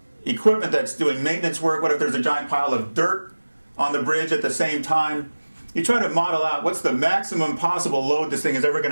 equipment that's doing maintenance work? What if there's a giant pile of dirt on the bridge at the same time? You try to model out what's the maximum possible load this thing is ever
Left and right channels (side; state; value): both; inverted; correlation -1.00